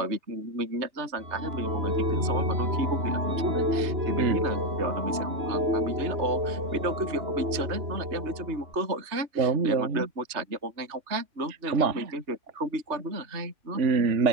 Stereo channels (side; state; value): left; late; 3.2 ms